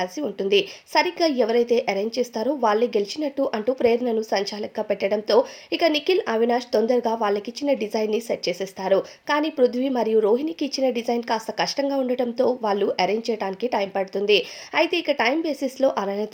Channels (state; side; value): identical; both; correlation 1.00